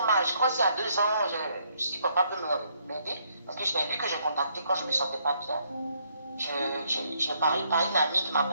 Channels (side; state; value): both; inverted; correlation -0.71